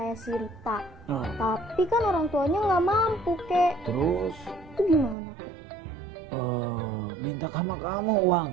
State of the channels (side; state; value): left; drops out; at 5.2 s